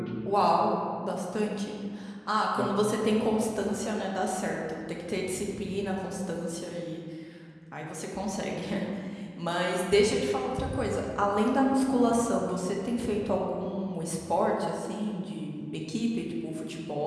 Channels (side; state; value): both; identical; correlation 1.00